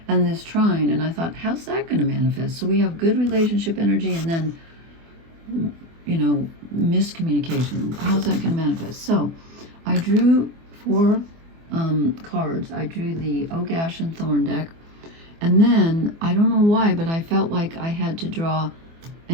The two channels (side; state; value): left; late; 24 ms